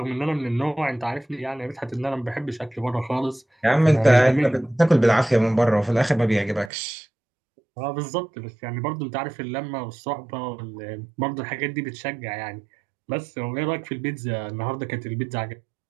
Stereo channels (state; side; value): drops out; left; at 6.7 s